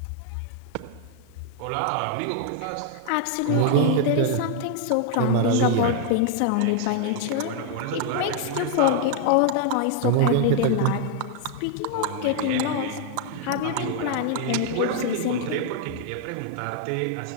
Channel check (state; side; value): different; both; correlation 0.00